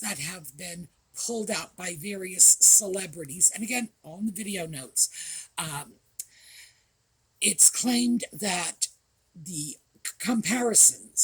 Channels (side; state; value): both; identical; correlation 1.00